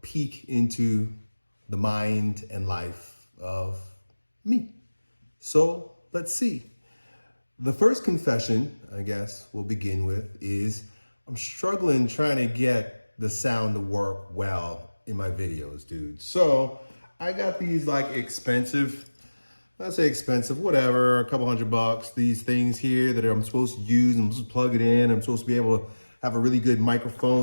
into the mind and life of me. So let's see. The first confession, I guess we'll begin with, is I'm struggling trying to get the sound to work well in my videos, dude. So I got these like expensive, I say expensive, whatever, a couple $100, these things here that I'm supposed to use. I'm supposed to plug it in. I'm supposed to be able to have a really good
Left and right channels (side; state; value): both; inverted; correlation -1.00